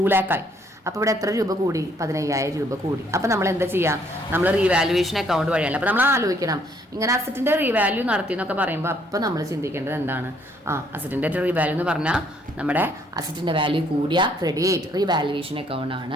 lakh ആയി. അപ്പോൾ ഇവിടെ എത്ര രൂപ കൂടി? 15,000 രൂപ കൂടി. അപ്പോൾ നമ്മൾ എന്താ ചെയ്യുക? നമ്മൾ റീവാലുവേഷൻ അക്കൗണ്ട് വഴിയാണ്. അപ്പോൾ നമ്മൾ ആലോചിക്കണം, ഇങ്ങനെ അസറ്റിന്റെ റീവാല്യൂ നടത്തി എന്നൊക്കെ പറയുമ്പോൾ അപ്പോൾ നമ്മൾ ചിന്തിക്കേണ്ടത് എന്താണ്? അസറ്റിന്റെ റീവാല്യൂ എന്ന് പറഞ്ഞാൽ നമ്മുടെ അസറ്റിന്റെ വാല്യൂ കൂടിയ ക്രെഡിറ്റ് റീവാലുവേഷൻ അക്കൗണ്ട്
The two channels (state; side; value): normal; both; correlation 0.66